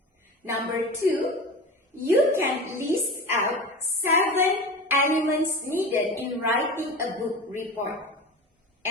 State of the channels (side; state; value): both; normal; correlation 0.31